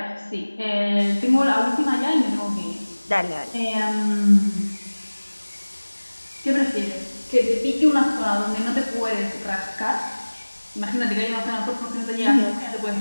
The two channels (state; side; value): inverted; both; correlation -1.00